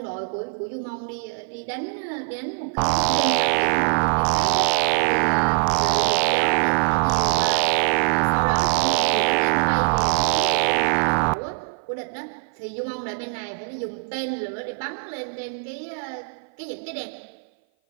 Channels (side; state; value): left; silent; 57 dB below the other